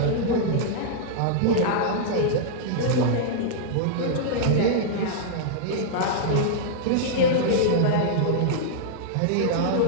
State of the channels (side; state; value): both; different; correlation -0.02